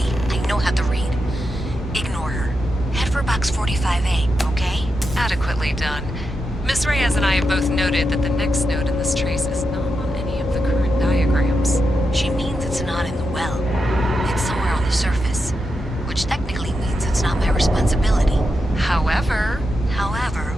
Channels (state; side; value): normal; both; correlation 0.87